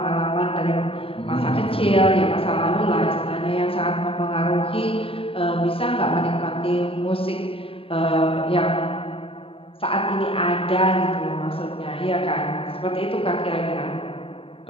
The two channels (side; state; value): right; late; 0.27 ms